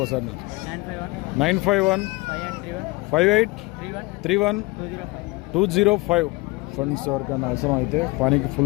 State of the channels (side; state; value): right; quieter; 23.8 dB